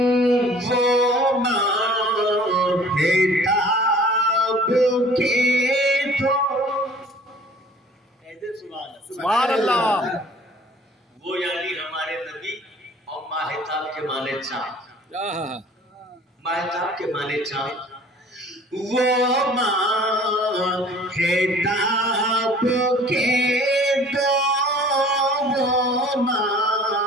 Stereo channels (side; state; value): both; normal; correlation 0.50